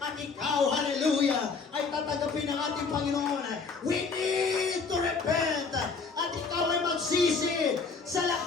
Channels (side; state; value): right; quieter; 4.8 dB